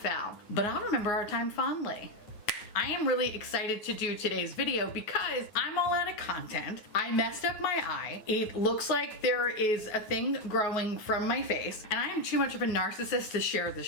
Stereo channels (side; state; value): right; late; 9.4 ms